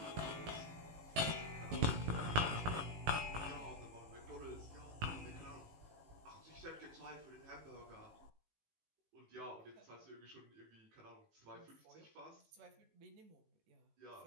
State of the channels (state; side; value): late; left; 18 ms